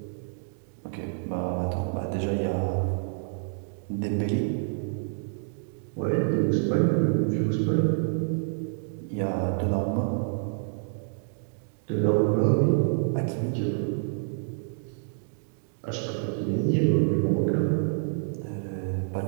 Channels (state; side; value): silent; left; digital silence